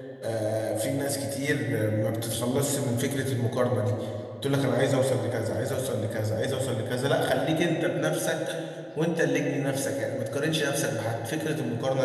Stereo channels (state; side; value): identical; both; correlation 1.00